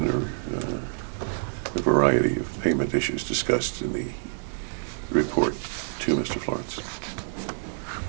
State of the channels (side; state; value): left; silent; digital silence